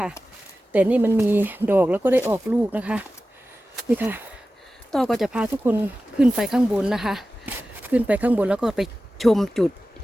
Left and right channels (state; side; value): normal; both; correlation 0.95